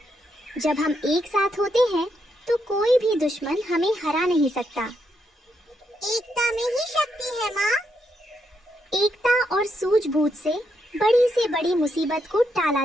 जब हम एक साथ होते हैं तो कोई भी दुश्मन हमें हरा नहीं सकता। एकता में ही शक्ति है माँ। एकता और सूझबूझ से बड़ी से बड़ी मुसीबत को टाला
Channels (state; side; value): normal; both; correlation 0.80